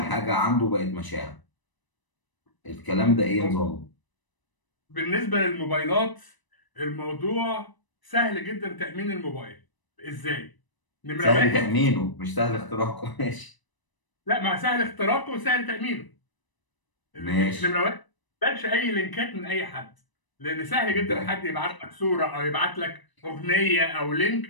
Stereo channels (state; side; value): late; right; 1.0 ms